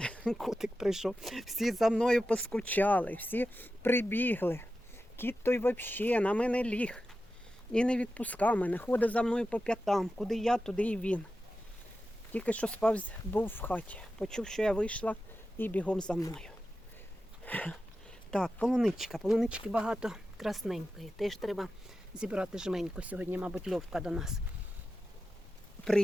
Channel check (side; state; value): both; normal; correlation 0.92